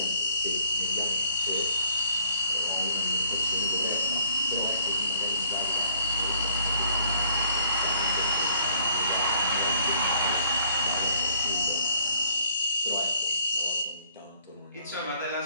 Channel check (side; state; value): both; inverted; correlation -0.62